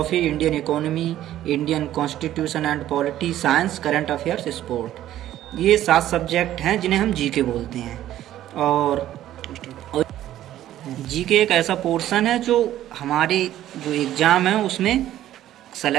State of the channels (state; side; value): quieter; left; 12.8 dB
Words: Indian economy, Indian constitution and polity, science, current affairs, sport. ये 7 सब्जेक्ट हैं जिन्हें हम जीके बोलते हैं। और जीके एक ऐसा पोर्शन है जो हमारे जो एग्ज़ाम है उसमें